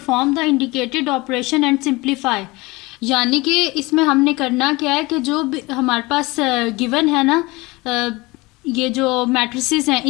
the indicated operation and simplify, यानी कि इसमें हमने करना क्या है कि जो हमारे पास गिवन है ना, ये जो मैट्रिसेस हैं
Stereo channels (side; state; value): right; quieter; 23.0 dB